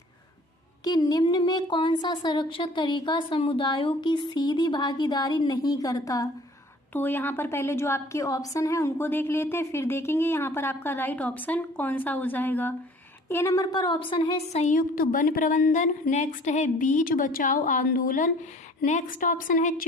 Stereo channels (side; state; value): both; normal; correlation 0.51